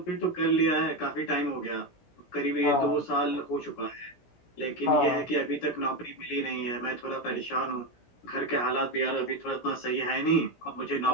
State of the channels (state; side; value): late; right; 17 ms